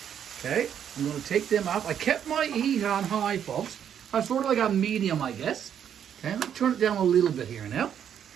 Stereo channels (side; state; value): left; quieter; 9.0 dB